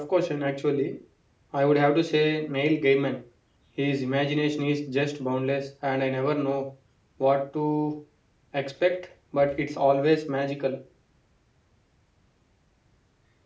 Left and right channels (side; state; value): both; identical; correlation 1.00